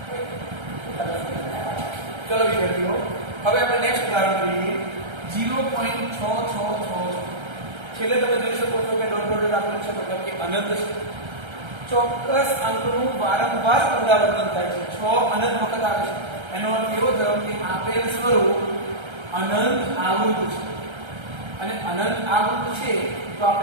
ચલો વિદ્યાર્થીઓ, હવે આપણે નેક્સ્ટ ઉદાહરણ જોઈએ. 0.666 છેલ્લે તમે જોઈ શકો છો કે ડોટ ડોટ આપેલું છે, મતલબ કે અનંત છે. ચોક્કસ અંકનું વારંવાર પુનરાવર્તન થાય છે. 6 અનંત વખત આવે છે. એનો અર્થ એવો થયો કે આપેલ સ્વરૂપ અનંત આવૃત છે અને અનંત આવૃત છે તો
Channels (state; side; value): late; left; 1.3 ms